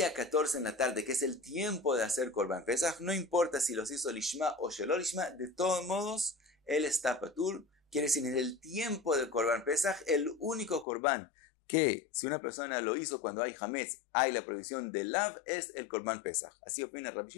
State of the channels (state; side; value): drops out; right; at 10.9 s